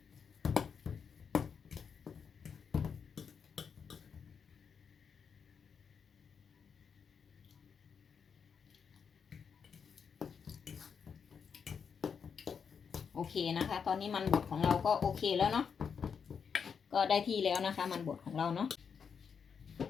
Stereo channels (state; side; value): quieter; right; 6.5 dB